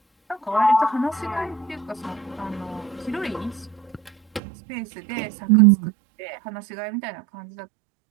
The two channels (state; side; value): drops out; left; at 4.4 s